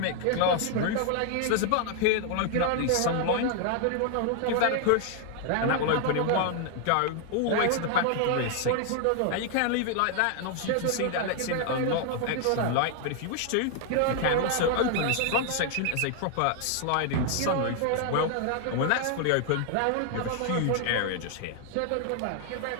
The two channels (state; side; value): different; both; correlation 0.00